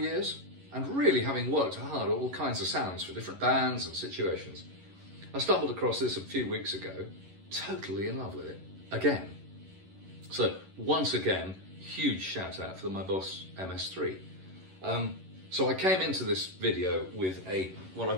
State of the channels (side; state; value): left; late; 11 ms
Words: And really having worked hard at all kinds of sounds for different bands and situations, I stumbled across this a few weeks ago, totally in love with it, again. So once again, huge shout out for my Boss MS-3. So I came into this video with what I